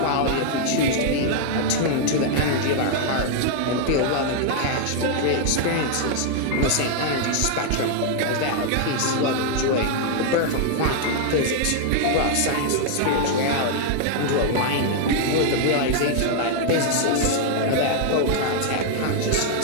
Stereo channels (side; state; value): both; different; correlation 0.00